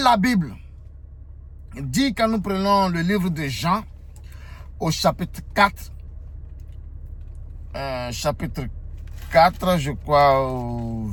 la Bible dit, quand nous prenons le livre de Jean, au chapitre 4, je crois, au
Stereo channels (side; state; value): both; identical; correlation 1.00